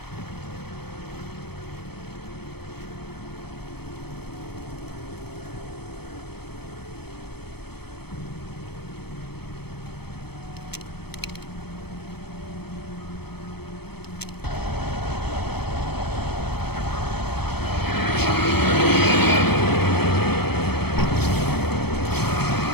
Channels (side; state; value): right; late; 0.97 ms